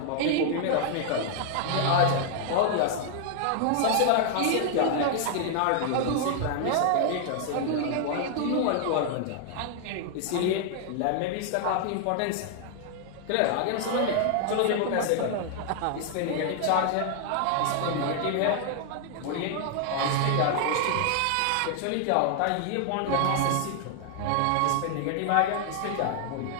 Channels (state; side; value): different; both; correlation 0.00